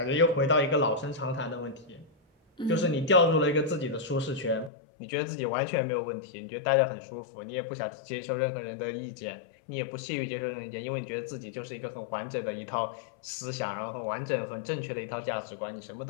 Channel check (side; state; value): right; drops out; at 4.7 s